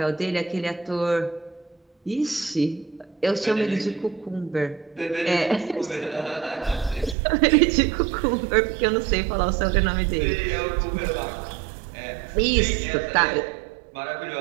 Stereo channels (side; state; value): left; drops out; at 7.2 s